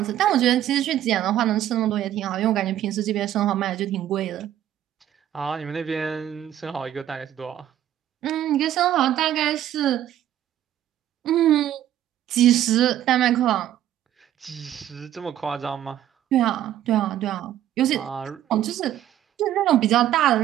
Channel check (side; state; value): left; quieter; 11.8 dB